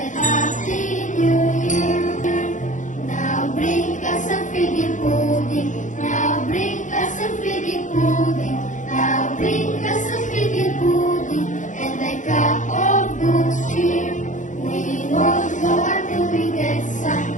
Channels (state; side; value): late; right; 0.36 ms